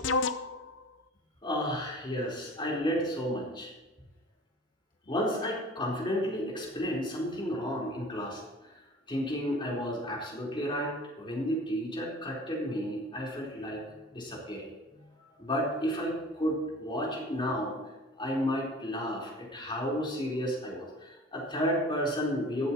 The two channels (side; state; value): both; normal; correlation 0.43